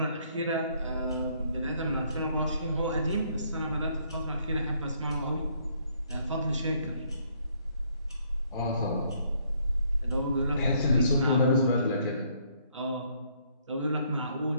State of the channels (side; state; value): both; inverted; correlation -0.68